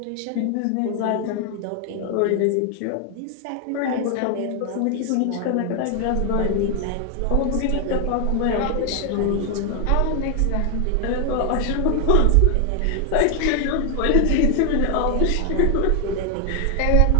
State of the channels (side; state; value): both; different; correlation 0.00